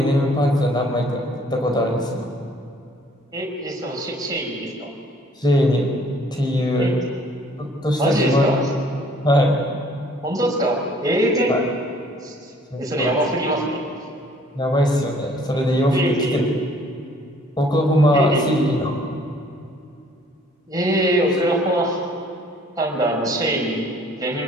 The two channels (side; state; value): both; normal; correlation 0.58